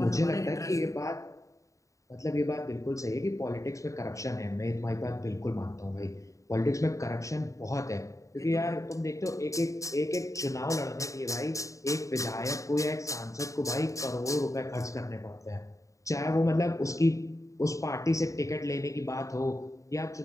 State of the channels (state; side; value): late; right; 0.16 ms